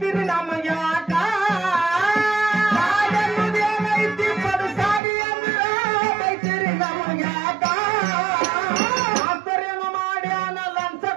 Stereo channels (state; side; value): drops out; left; at 5.0 s